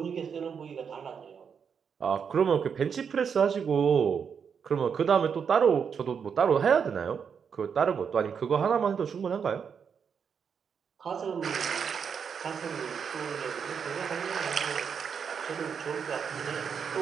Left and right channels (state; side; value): quieter; left; 6.8 dB